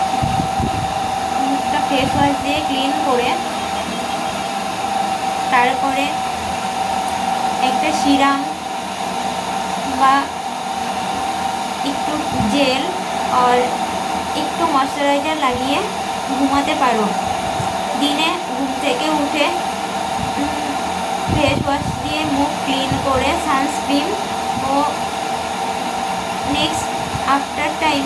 মুখটা ফেস ওয়াশ দিয়ে ক্লিন করে তারপরে একটা সিরাম বা একটু জেল আর একটু ময়শ্চারাইজার লাগিয়ে ঘুমাতে পারো। দিনে ঘুম থেকে উঠে ফেস ওয়াশ দিয়ে মুখ ক্লিন করে সানস্ক্রিন ও নেক্সট আফটার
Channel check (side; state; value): both; identical; correlation 1.00